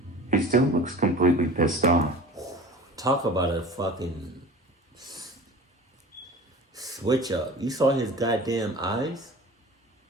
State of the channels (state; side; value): normal; both; correlation 0.39